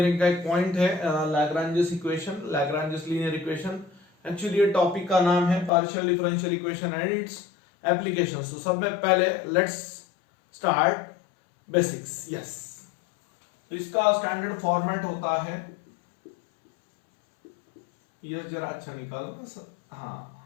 का एक पॉइंट है Lagrange's equation, Lagrange's linear equation. Actually ये टॉपिक का नाम है partial differential equation and it's applications. तो सब में पहले लेट्स स्टार्ट बेसिक्स। यस, तो इसका स्टैंडर्ड फॉर्मेट होता है, ये जरा अच्छा निकाल। हाँ,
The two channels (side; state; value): right; drops out; at 5.7 s